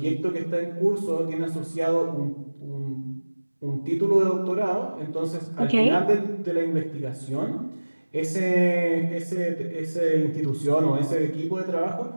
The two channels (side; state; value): both; inverted; correlation -1.00